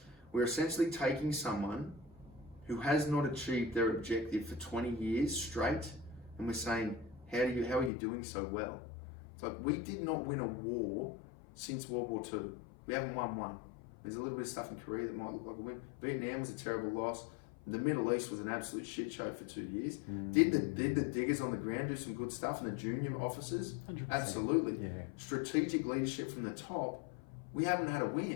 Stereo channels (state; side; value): drops out; right; at 7.9 s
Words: we're essentially taking someone who has not achieved their objective for 20 years straight, and we're saying, how are you doing so well? It's like, we did not win a war since World War II. We haven't won one. There's a little bit of stuff in Korea that might look like a win. Vietnam was a terrible loss. The Middle East was an absolute shit show for 2 years. Did the diggers on the ground do some good stuff and the junior officers? 100%. Absolutely. Yeah. Strategic leadership from the top, we haven't had a